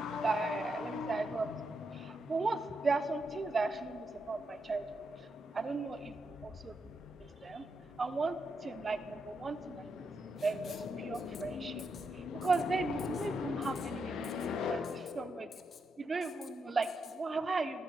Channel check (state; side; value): normal; both; correlation 0.82